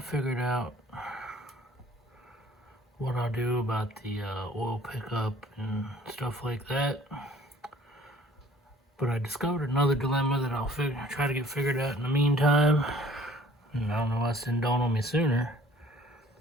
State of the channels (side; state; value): both; normal; correlation 0.54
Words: out what I'll do about the oil pickup and stuff like that. But I discovered another dilemma that I'll try to get figured out in the meantime. And I don't know why this didn't dawn on me sooner.